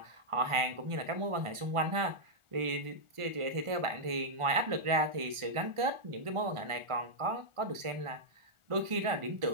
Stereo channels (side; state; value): left; late; 1.4 ms